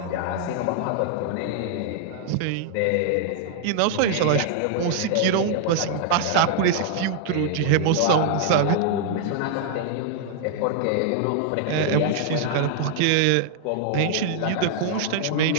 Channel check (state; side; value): different; both; correlation 0.00